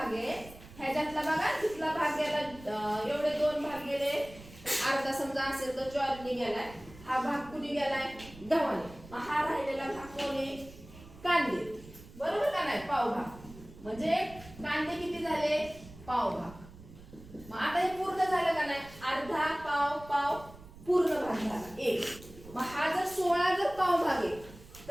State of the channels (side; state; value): right; noise; rumble, 18 dB below the sound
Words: आहे ह्याच्यातला बघा तिथला भाग गेला एवढे 2 भाग गेले अर्धा समजा असेल तर ज्वारीने गेलाय हा भाग कुणी गेलाय गव्हाने मग हा राहिलेला भाग कोणी कांदे बरोबर का नाही पाव भाग म्हणजे कांदे किती झाले पाव भाग मग आता हे पूर्ण झालं का नाही अर्धा पाव पूर्ण भाग झाला 1 मग हा जर 16 जर पाव भाग आहे